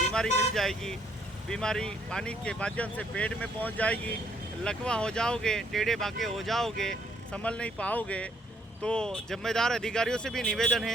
मिल जाएगी, बीमारी पानी के माध्यम से पेट में पहुंच जाएगी, लकवा हो जाओगे, टेढ़े बाके हो जाओगे, संभल नहीं पाओगे। तो जिम्मेदार अधिकारियों से भी निवेदन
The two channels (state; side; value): normal; both; correlation 0.68